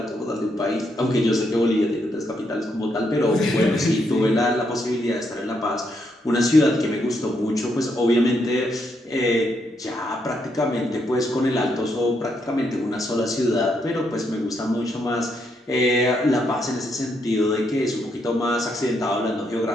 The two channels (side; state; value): both; normal; correlation 0.77